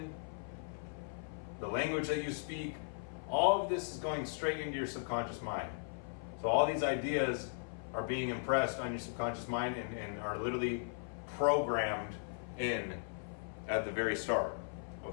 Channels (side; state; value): right; silent; 53 dB below the other